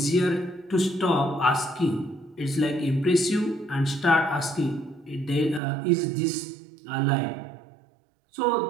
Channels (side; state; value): left; drops out; at 5.6 s